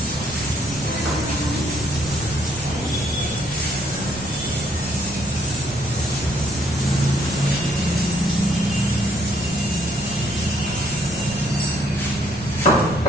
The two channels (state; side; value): noise; right; rumble, 20 dB below the sound